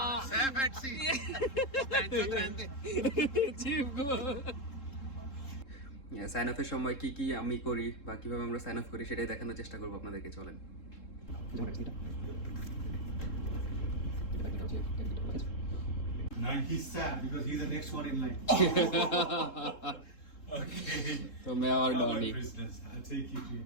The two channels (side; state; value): right; late; 3.7 ms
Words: সাইন অফের সময় কি কি আমি করি বা কিভাবে আমরা সাইন অফ করি সেটাই দেখানোর চেষ্টা করবো আপনাদেরকে। চলেন। Now he's sad because he's the next one in line. Okay. तो मैं और Come on, Donny. prisoners. I'll take you to